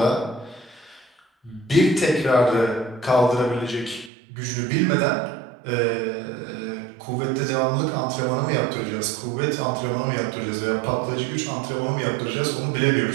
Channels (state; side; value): drops out; left; at 4.1 s